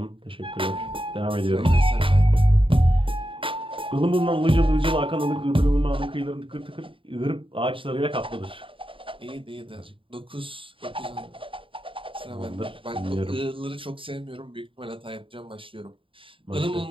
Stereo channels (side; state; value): left; late; 0.25 ms